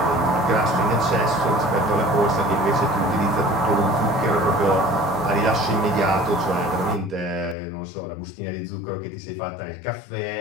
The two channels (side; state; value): right; drops out; at 7.6 s